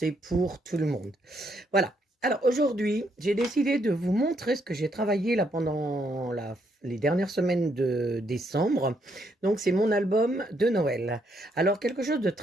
pour tout le monde. Voilà. Alors aujourd'hui, j'ai décidé de vous montrer ce que j'ai travaillé là pendant les dernières semaines de décembre. Donc c'est mon album de Noël. Alors quelque chose de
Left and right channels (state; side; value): normal; both; correlation 0.74